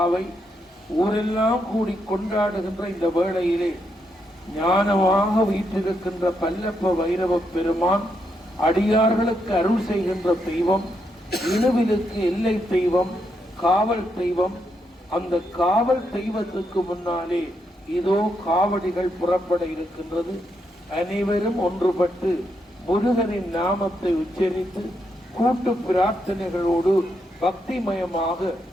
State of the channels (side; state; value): both; normal; correlation 0.80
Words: ஊரெல்லாம் கூடி கொண்டாடுகின்ற இந்த வேளையிலே ஞானமாக வீற்றிருக்கின்ற பல்லப்ப வைரவ பெருமான் அடியார்களுக்கு அருள் செய்கின்ற தெய்வம், இணுவிலுக்கு எல்லை தெய்வம், காவல் தெய்வம். அந்த காவல் தெய்வத்துக்கு முன்னாலே இதோ காவடிகள் புறப்பட இருக்கின்றது. அனைவரும் ஒன்றுபட்டு முருகனின் நாமத்தை உச்சரித்து கூட்டு பிரார்த்தனைகளோடு பக்திமயமாக